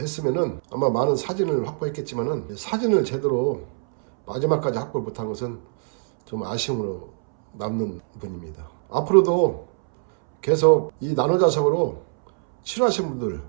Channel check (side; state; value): left; silent; 63 dB below the other